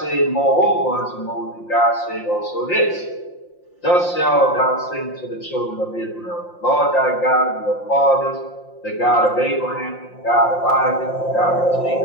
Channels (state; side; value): late; right; 5.7 ms